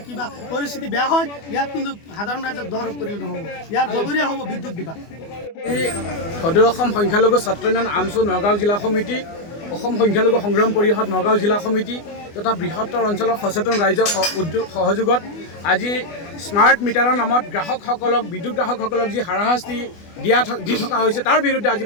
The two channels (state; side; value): late; right; 24 ms